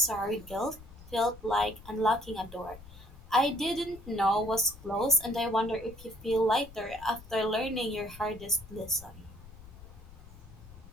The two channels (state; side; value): noise; left; rumble, 18 dB below the sound